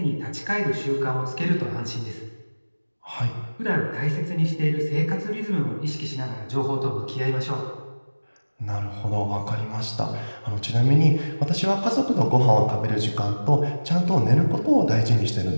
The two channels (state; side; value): inverted; both; correlation -1.00